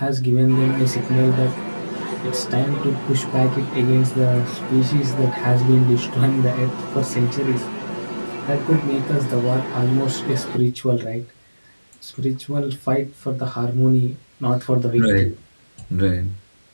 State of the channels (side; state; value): both; inverted; correlation -1.00